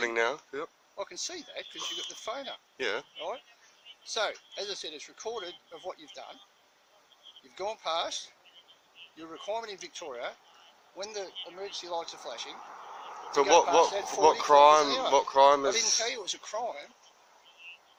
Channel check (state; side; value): identical; both; correlation 1.00